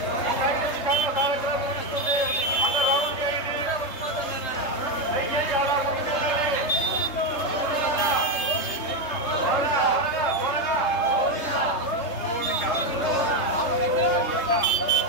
కార్యక్రమం ముగిస్తుంది. అందరూ రౌండ్ చేయండి.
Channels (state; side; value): late; right; 3.3 ms